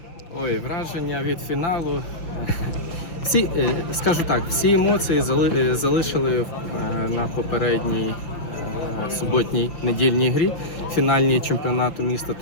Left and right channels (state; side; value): late; right; 5.9 ms